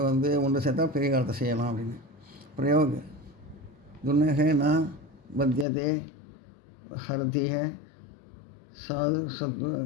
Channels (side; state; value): right; drops out; at 5.7 s